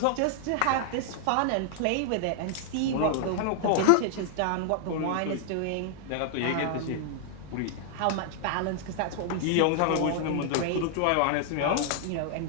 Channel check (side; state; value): both; different; correlation 0.00